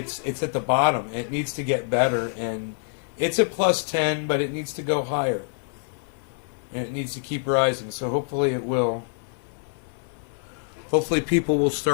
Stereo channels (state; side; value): silent; right; 57 dB below the other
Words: at the bottom. It needs to get better. And it's at plus 10, but it needs to go higher. And it needs to keep rising. So hopefully it will. Hopefully people will